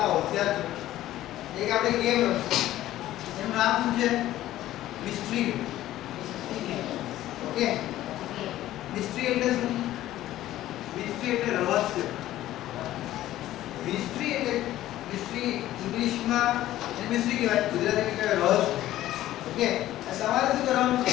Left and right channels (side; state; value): right; quieter; 14.2 dB